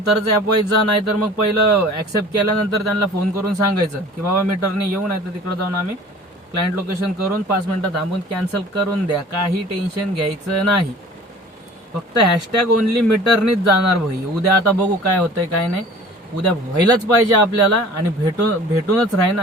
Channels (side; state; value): both; normal; correlation 0.45